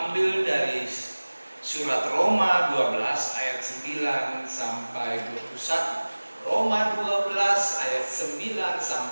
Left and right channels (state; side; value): inverted; both; correlation -1.00